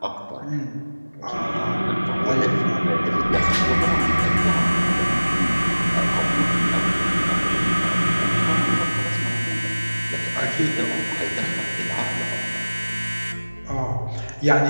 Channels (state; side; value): inverted; both; correlation -1.00